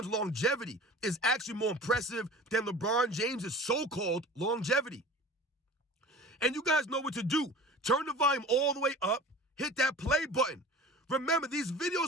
longevity is actually more impressive than LeBron James' so-called longevity. And you guys know what to do. Turn the volume all the way up, hit that play button. Remember, these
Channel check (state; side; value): normal; both; correlation 0.39